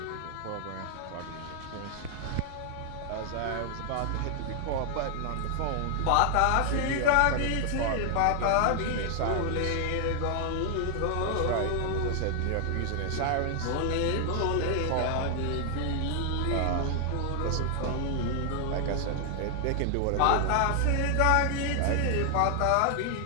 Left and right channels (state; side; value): different; both; correlation 0.00